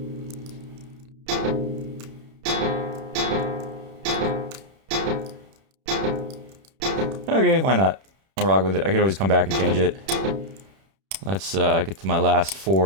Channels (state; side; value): late; left; 31 ms